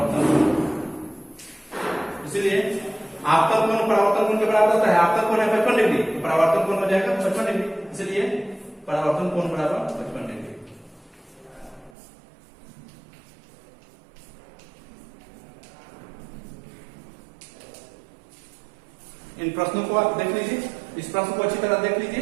कोण, इसलिए आपतन कोण परावर्तन कोण के बराबर होता है। आपतन कोण है 55 डिग्री, तो परावर्तन कोण हो जाएगा 55 डिग्री, इसलिए परावर्तन कोण बराबर 55 डिग्री। इन प्रश्नों को आप देख लीजिए। इस प्रश्न को अच्छी तरह देख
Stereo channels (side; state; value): left; drops out; at 11.9 s